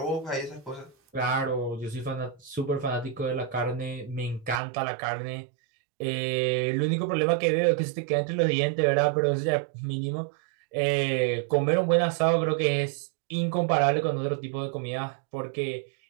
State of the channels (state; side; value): drops out; left; at 4.6 s